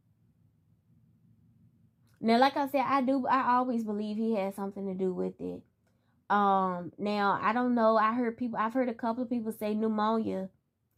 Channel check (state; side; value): identical; both; correlation 1.00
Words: Now, like I said, I always believe he had something to do with it. Now, I don't know. I've heard a couple of people say pneumonia